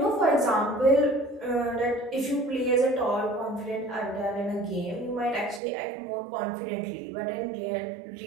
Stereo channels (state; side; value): drops out; left; at 5.6 s